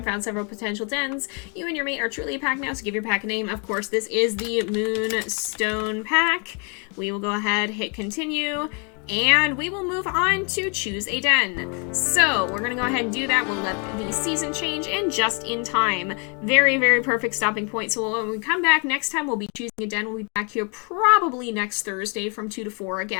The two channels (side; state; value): right; quieter; 36.2 dB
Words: found several potential dens. You and your mate are truly a pack now, so give your pack a name. Of course, this is the Moonstone pack. We will go ahead, hit continue, and we will move on to choose a den. So we're gonna go ahead and do that. We'll let the season change and just in time. Very, very perfect stopping point. So when we come back next time, we'll be choosing a den. We'll be back here probably next Thursday from 2 to 4